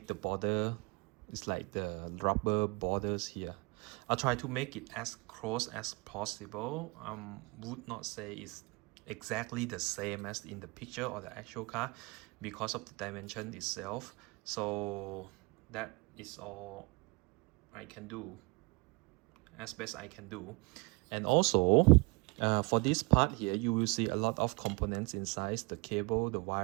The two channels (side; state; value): left; quieter; 27.3 dB